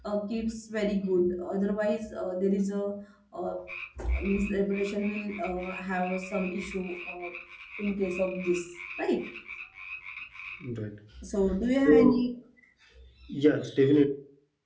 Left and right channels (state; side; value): identical; both; correlation 1.00